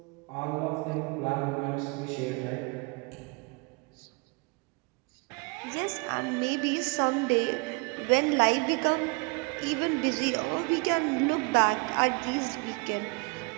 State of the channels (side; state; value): left; quieter; 30.5 dB